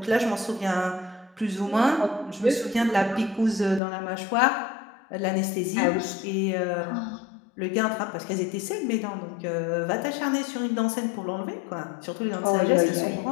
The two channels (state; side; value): drops out; right; at 3.8 s